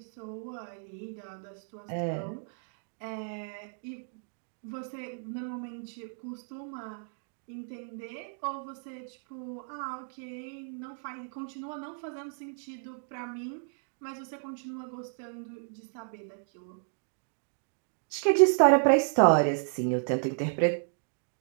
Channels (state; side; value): silent; left; digital silence